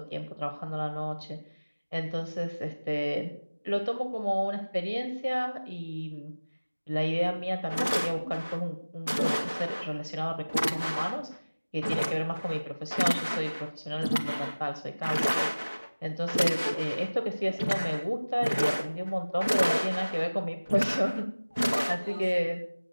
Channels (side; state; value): both; inverted; correlation -1.00